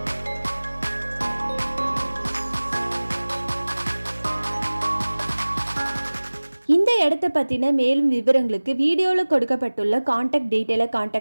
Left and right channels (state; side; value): inverted; both; correlation -1.00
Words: இந்த இடத்தை பற்றின மேலும் விவரங்களுக்கு வீடியோவில் கொடுக்கப்பட்டுள்ள கான்டாக்ட் டீட்டெயிலை